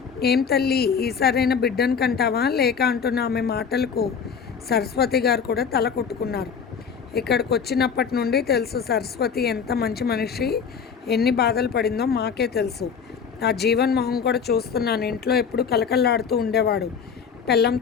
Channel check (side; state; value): right; quieter; 6.5 dB